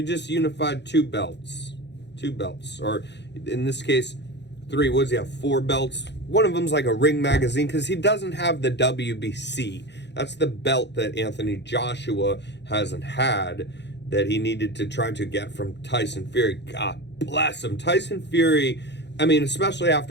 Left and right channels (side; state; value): right; late; 0.50 ms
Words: just unified two belts, or in this case, 3, what does he have, 4 belts? One of them's like a Ring Magazine, because he doesn't have the WBC. That's the belt that Anthony Joshua hasn't had, that he needed to try to get from Tyson Fury. God bless him. Tyson Fury, I mean, especially